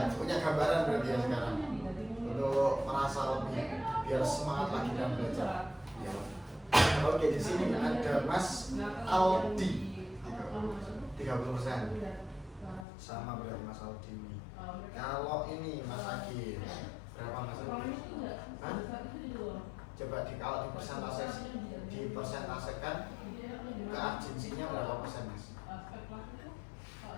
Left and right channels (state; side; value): drops out; right; at 12.9 s